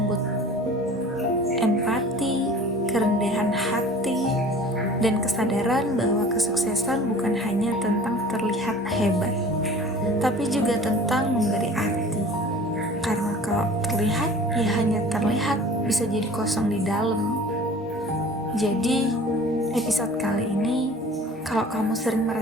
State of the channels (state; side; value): normal; both; correlation 0.44